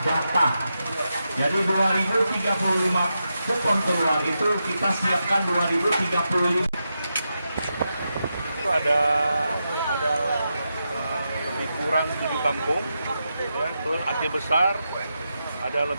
data. Jadi 2035 kupon keluar itu kita siapkan 2035. Ada lebih kurang 7 kampung, ya, terus Aceh Besar ada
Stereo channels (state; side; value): inverted; both; correlation -0.87